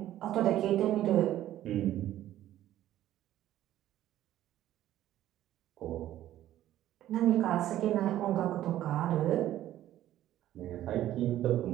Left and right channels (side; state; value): left; quieter; 13.1 dB